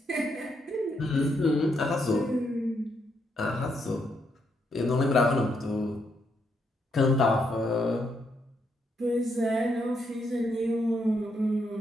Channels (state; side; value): normal; both; correlation 0.77